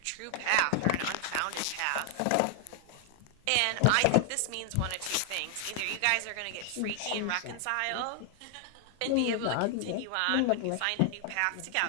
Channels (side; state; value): both; different; correlation 0.00